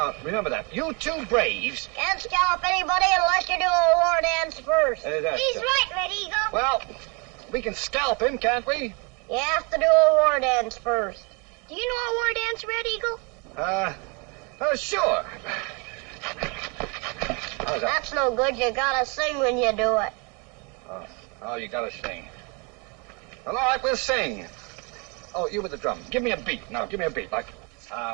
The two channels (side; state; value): left; quieter; 32.0 dB